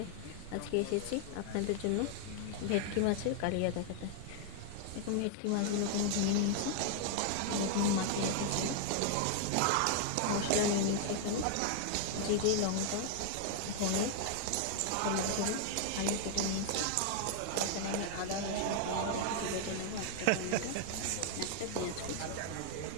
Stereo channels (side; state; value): both; different; correlation 0.00